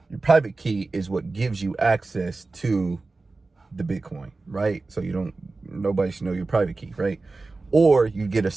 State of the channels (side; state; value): left; quieter; 3.6 dB